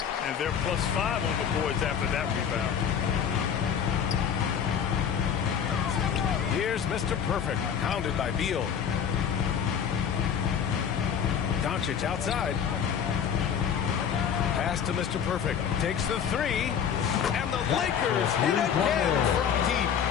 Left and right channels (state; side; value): quieter; right; 7.9 dB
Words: And they're +5 on the boards after that rebound. Here's Mr. Perfect, pounded by Beal. Doncic outside. Pass to Mr. Perfect. Takes the 3. And the Lakers hit again from deep.